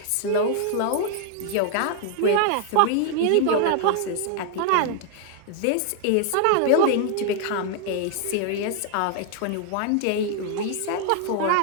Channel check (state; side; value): different; both; correlation 0.00